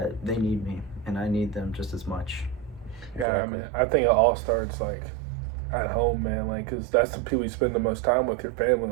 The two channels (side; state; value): left; drops out; at 3.2 s